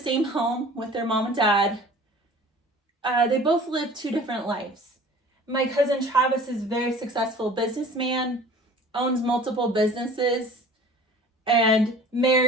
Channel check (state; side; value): normal; both; correlation 0.45